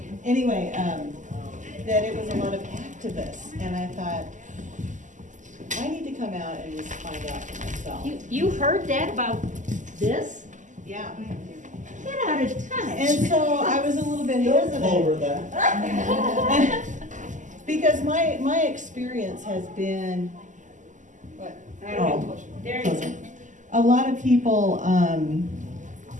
anyway, that it was a lot of activists, and I thought, I need to come out and just find out for myself. You heard that about this? Yeah. Get out of touch. And so I was a little bit hesitant. Over that. Because my experience has been, what? There you go. A lot of people, and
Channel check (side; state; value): left; late; 0.37 ms